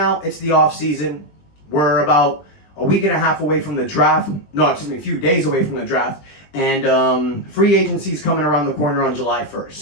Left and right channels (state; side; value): late; right; 20 ms